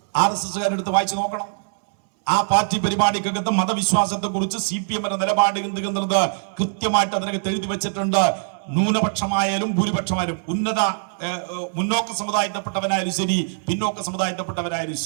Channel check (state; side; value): silent; left; 64 dB below the other